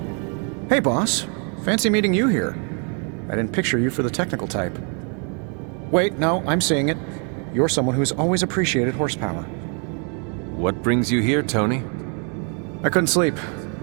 Hey, boss. Fancy meeting you here. I didn't picture you for the technical type. Wait, no, I'm seeing it. You're someone who's always appreciated horsepower. What brings you here, Tony? I couldn't sleep.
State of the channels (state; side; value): quieter; left; 38.7 dB